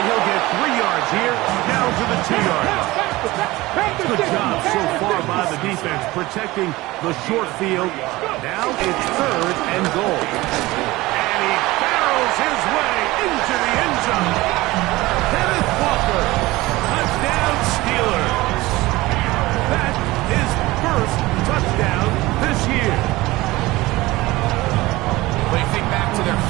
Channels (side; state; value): left; quieter; 19.7 dB